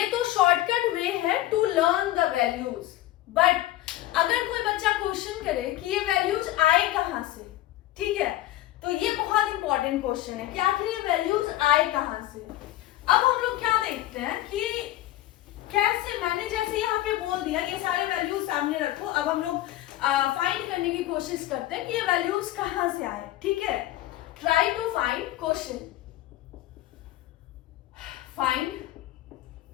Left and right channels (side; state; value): right; quieter; 15.2 dB